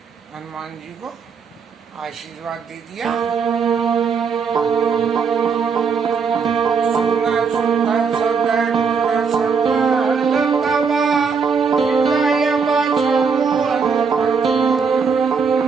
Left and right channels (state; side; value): quieter; left; 5.6 dB